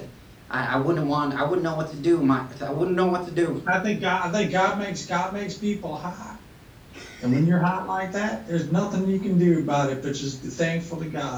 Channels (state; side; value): identical; both; correlation 1.00